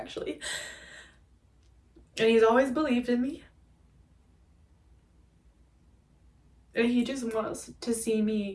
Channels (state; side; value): identical; both; correlation 1.00